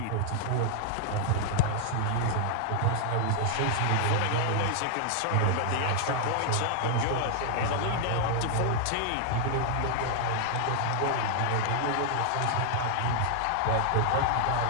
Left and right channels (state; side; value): different; both; correlation 0.00